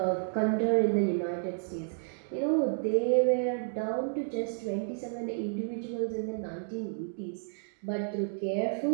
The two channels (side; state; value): left; silent; digital silence